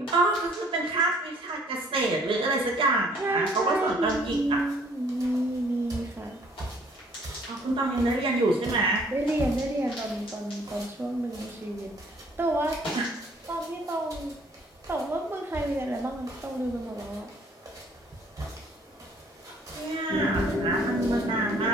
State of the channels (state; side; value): normal; both; correlation 0.59